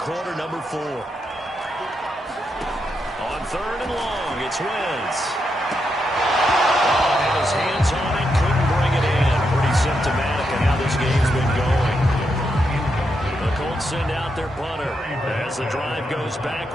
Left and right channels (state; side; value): normal; both; correlation 0.82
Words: number 4. 3rd and long. It's Wentz. Had his hands on it, couldn't bring it in. Pretty symptomatic of how this game's been going. The Colts send out their punter as the drive goes